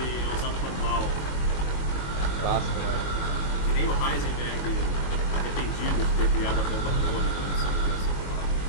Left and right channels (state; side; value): late; right; 21 ms